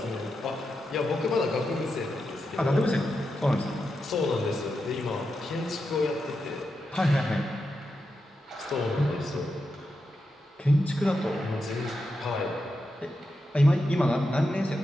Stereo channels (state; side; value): normal; both; correlation 0.87